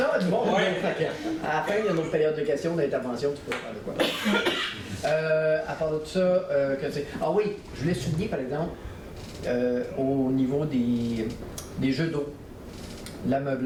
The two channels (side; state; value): both; identical; correlation 1.00